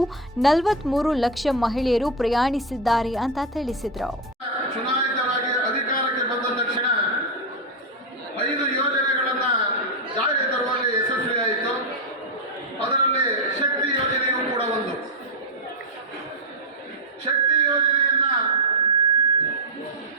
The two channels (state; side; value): normal; both; correlation 0.05